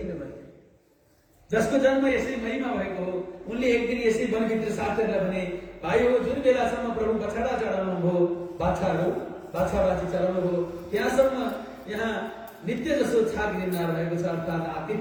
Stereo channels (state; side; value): identical; both; correlation 1.00